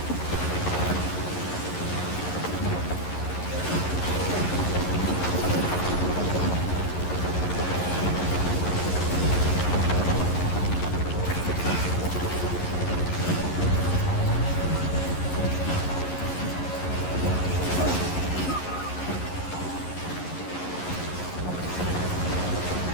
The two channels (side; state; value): right; late; 11 ms